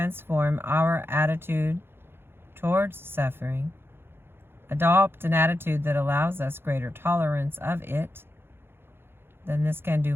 our attitude towards suffering, adopt an attitude that allows us greater tolerance of it, then this can do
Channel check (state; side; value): late; left; 0.11 ms